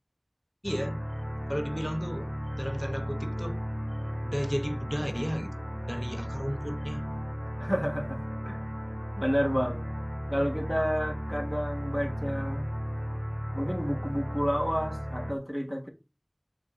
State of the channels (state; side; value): identical; both; correlation 1.00